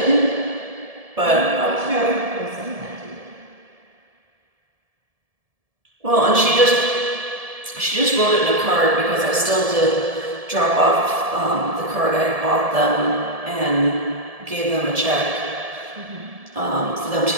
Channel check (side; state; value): left; late; 1.7 ms